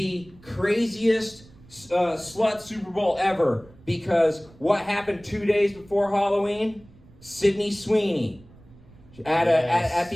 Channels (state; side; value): noise; right; rumble, 24 dB below the sound